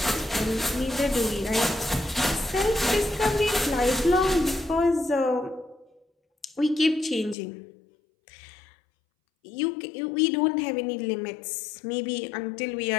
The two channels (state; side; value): drops out; right; at 7.4 s